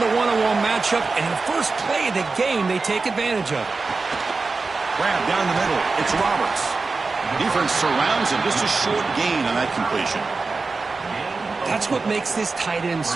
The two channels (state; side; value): quieter; left; 4.0 dB